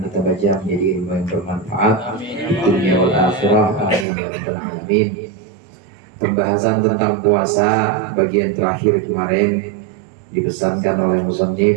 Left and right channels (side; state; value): left; drops out; at 4.0 s